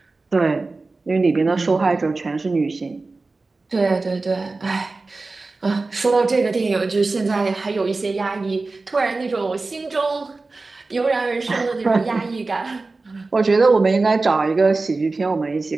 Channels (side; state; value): left; quieter; 3.6 dB